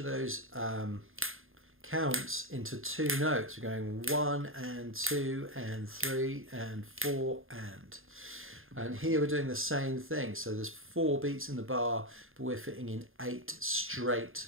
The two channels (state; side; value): late; left; 0.60 ms